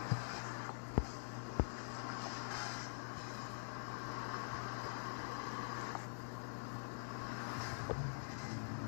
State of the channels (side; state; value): right; silent; digital silence